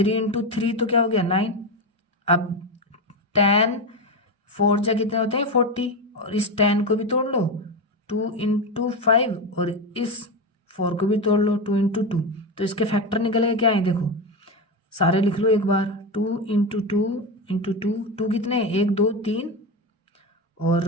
इंटू 3 तो क्या हो गया, 9। अब 10 4 जा कितने होते हैं, 40। और इस 10 को भी तोड़ लो, 2 इंटू 5। और इस 4 को भी तोड़ लो, 2 इंटू 2। तो इसके फैक्टर निकलेगा क्या है, देखो सारे लिख लो एक बार। 2 इंटू 2 इंटू 2, 2 कितने, 1 2 3, और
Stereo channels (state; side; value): normal; both; correlation 0.16